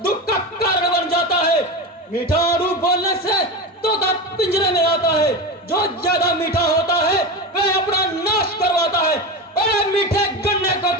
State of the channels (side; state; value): both; normal; correlation 0.23